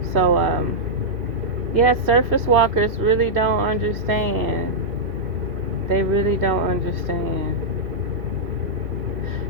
So, surface walkers really don't understand. They really don't understand.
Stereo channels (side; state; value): left; late; 2.6 ms